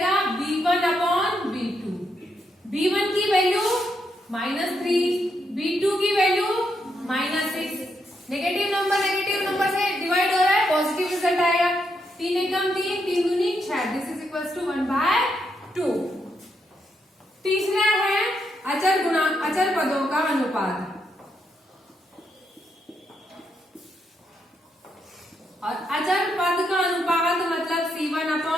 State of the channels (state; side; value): normal; both; correlation 0.79